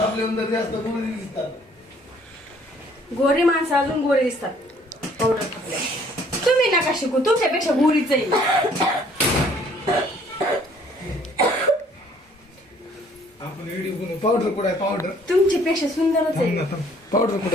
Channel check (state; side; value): normal; both; correlation 0.60